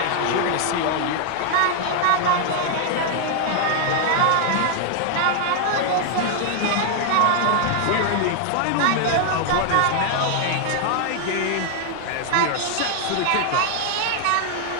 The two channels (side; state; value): both; different; correlation 0.00